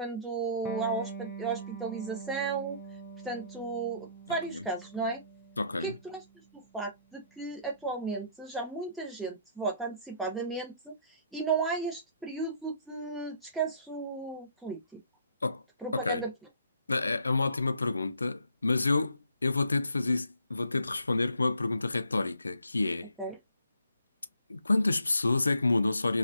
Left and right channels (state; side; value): inverted; both; correlation -0.65